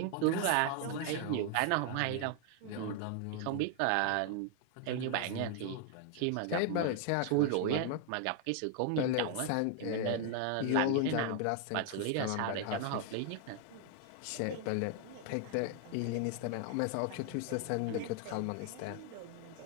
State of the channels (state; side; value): different; both; correlation 0.00